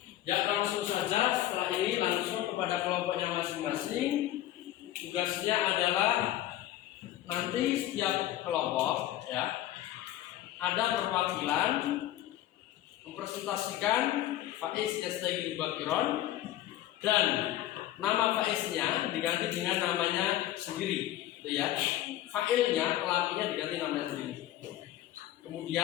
Ya langsung saja setelah ini langsung kepada kelompoknya masing-masing. Tugasnya adalah nanti setiap kelompok ya ada perwakilan mempresentasikan Faiz Yastaghil Bakiron dan nama Faiznya diganti dengan namanya sendiri, gitu ya. Failnya, pelakunya diganti namanya sendiri.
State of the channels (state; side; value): quieter; right; 13.8 dB